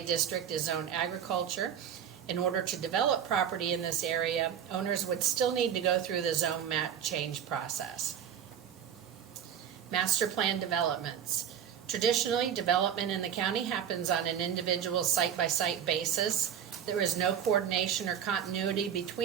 district is zoned agriculture. In order to develop property in this area, owners would still need to go through the zone map change process. Master plan developments. Traditionally, development in the county happens on an individual site-by-site basis. There is no coordination or continuity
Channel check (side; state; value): left; quieter; 8.8 dB